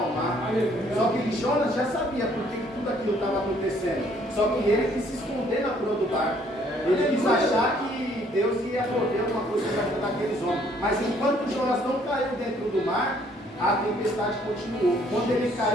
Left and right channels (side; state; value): both; normal; correlation 0.63